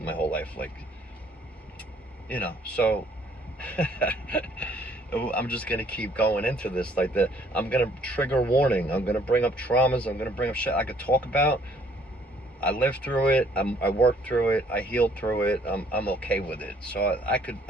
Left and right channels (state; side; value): normal; both; correlation 0.62